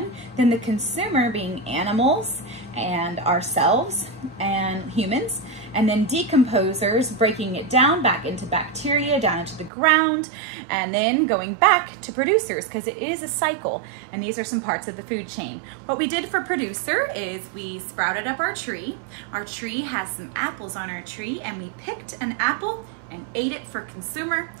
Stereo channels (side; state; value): left; drops out; at 9.7 s